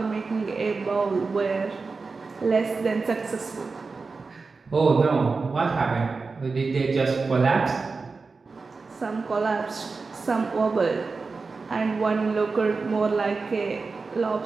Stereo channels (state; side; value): quieter; left; 4.3 dB